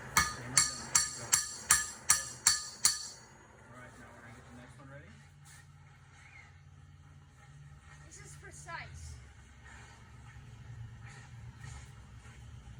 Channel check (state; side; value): identical; both; correlation 1.00